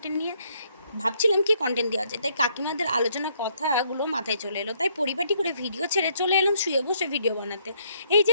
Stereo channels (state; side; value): inverted; both; correlation -0.70